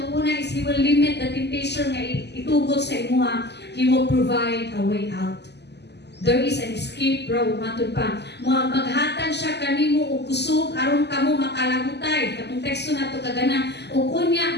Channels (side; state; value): right; late; 0.50 ms